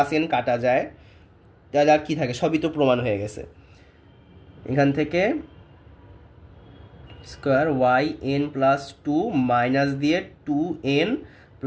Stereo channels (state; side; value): identical; both; correlation 1.00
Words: এন কাটা যায়, তাহলে আর কি থাকে, সবই তো প্রমাণ হয়ে গেছে। এখান থেকে square y n plus 2 minus দিয়ে 2n